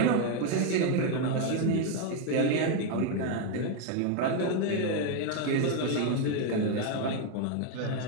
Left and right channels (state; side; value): different; both; correlation 0.01